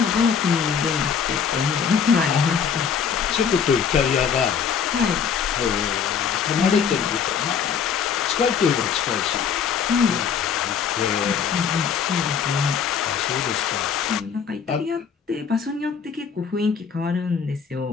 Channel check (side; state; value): right; quieter; 7.0 dB